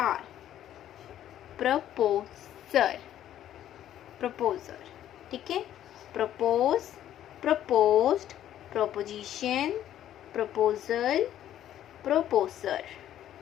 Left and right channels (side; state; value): right; quieter; 11.5 dB